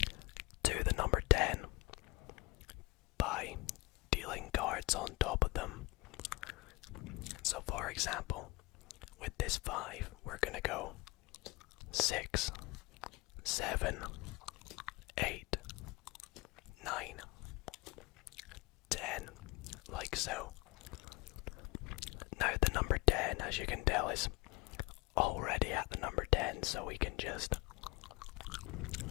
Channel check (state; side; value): quieter; right; 24.1 dB